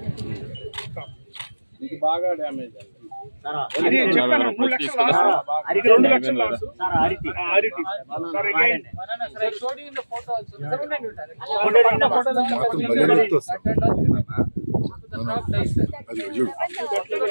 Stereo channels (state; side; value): inverted; both; correlation -1.00